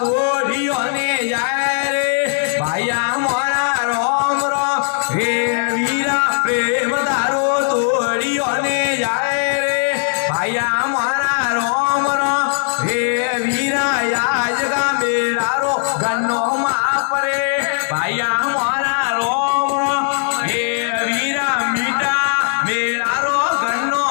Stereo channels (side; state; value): right; silent; 67 dB below the other